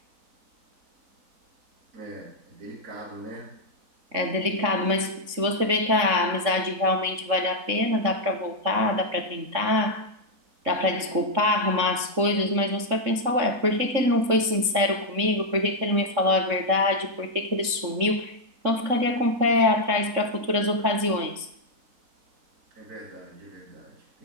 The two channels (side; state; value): left; late; 3.6 ms